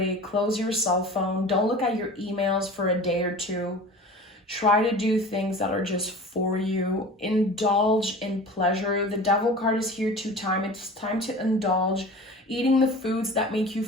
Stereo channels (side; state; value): both; normal; correlation 0.38